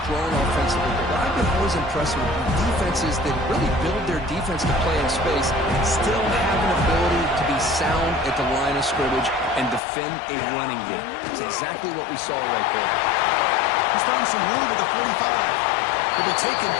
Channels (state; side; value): drops out; right; at 9.8 s